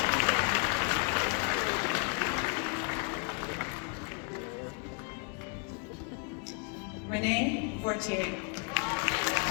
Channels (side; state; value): right; quieter; 35.8 dB